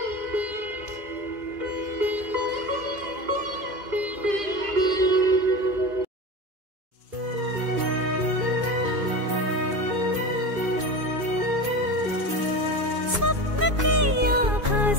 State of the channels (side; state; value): left; late; 2.5 ms